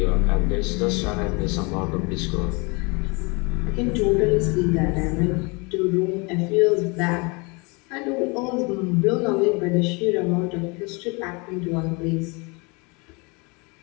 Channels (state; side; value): quieter; right; 29.4 dB